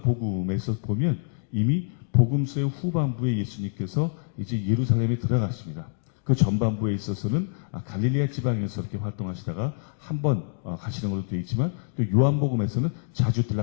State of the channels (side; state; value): right; silent; digital silence